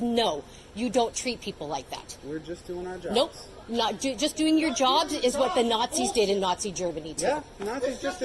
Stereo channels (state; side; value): identical; both; correlation 1.00